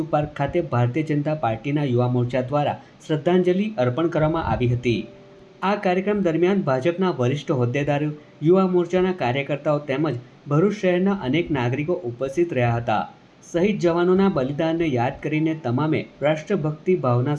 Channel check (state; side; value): identical; both; correlation 1.00